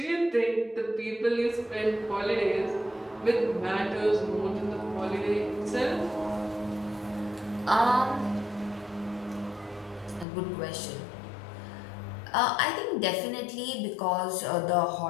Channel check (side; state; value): right; drops out; at 10.2 s